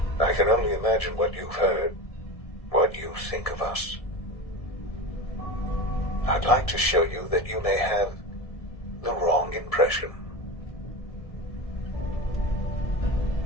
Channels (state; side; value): late; right; 1.7 ms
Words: I can only imagine what you've heard, what you think of us. I'd like to show you that you may have the wrong impression.